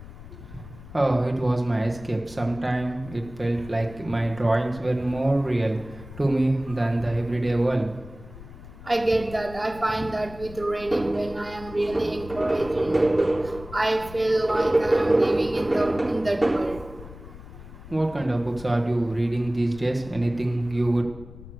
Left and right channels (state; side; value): noise; left; rumble, 16 dB below the sound